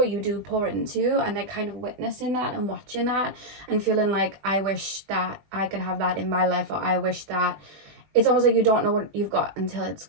you do pour into, and they're kind of witnessing that and watching that and feeling like, I wish that I could have that in my life, or I wish that it's almost like you don't know what you've got until it's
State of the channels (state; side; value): late; left; 20 ms